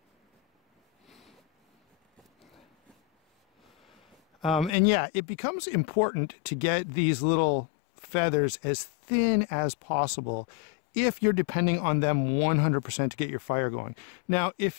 And yeah, it becomes important to get these little feathers as thin as possible if you're depending on them 100% to get your fire going. Now,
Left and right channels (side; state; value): right; drops out; at 4.8 s